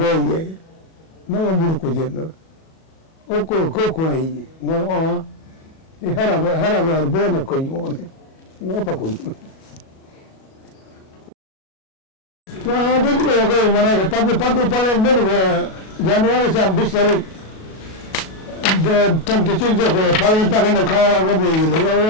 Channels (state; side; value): late; right; 37 ms